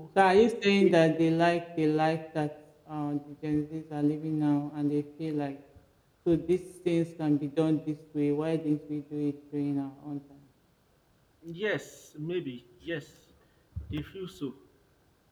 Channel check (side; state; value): both; identical; correlation 1.00